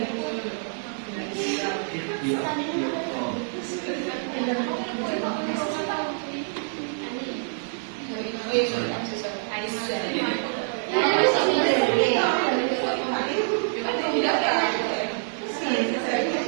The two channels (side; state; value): left; silent; digital silence